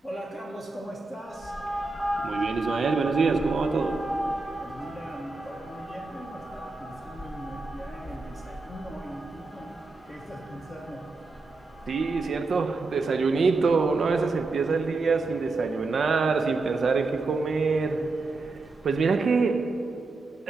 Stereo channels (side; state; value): left; quieter; 3.7 dB